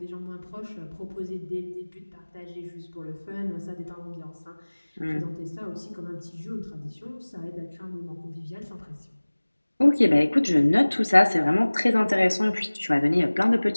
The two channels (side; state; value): both; inverted; correlation -1.00